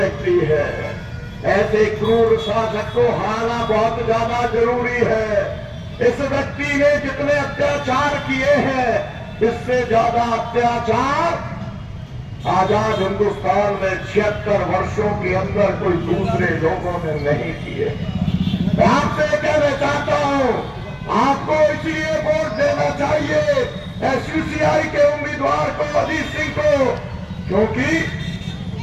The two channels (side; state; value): both; identical; correlation 1.00